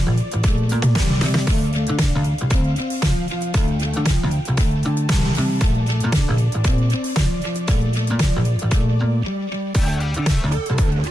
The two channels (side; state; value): both; normal; correlation 0.90